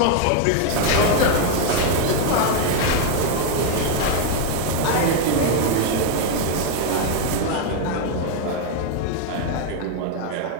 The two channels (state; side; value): different; both; correlation 0.01